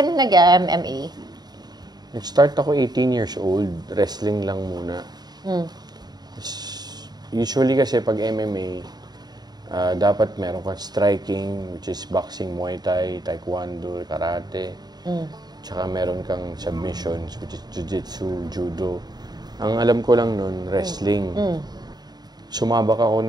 na nag-MMA? Nag-start ako 18 years old. Wrestling lang muna. Usually kasi pag MMA, dapat meron kang striking, which is boxing, Muay Thai, Taekwondo, Karate. Tsaka meron kang submissions, which is Jiu-Jitsu, Judo. Ang alam ko lang nun, wrestling. Sumabak ako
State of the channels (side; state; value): left; late; 0.20 ms